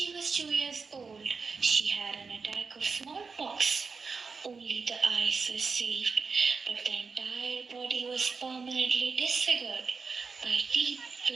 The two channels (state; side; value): quieter; left; 4.9 dB